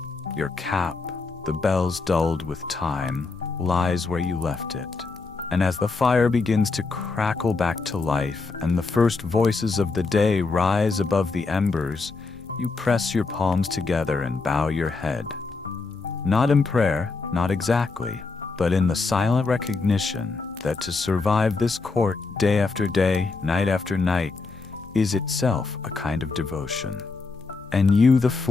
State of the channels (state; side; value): quieter; right; 4.1 dB